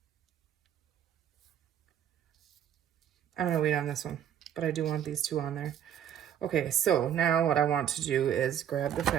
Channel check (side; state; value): left; quieter; 9.8 dB